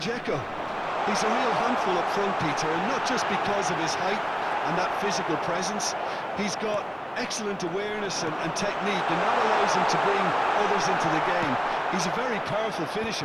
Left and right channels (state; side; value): identical; both; correlation 1.00